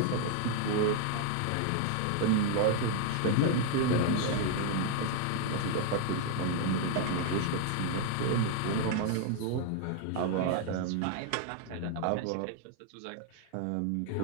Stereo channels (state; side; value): different; both; correlation 0.00